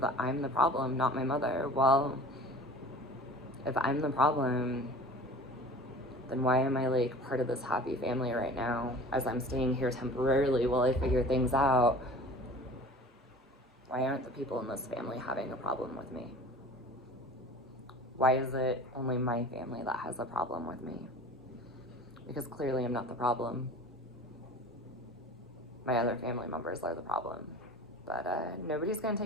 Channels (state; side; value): normal; both; correlation 0.41